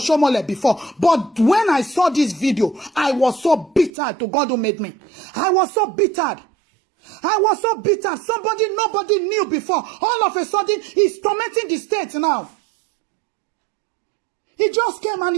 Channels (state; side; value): drops out; left; at 3.9 s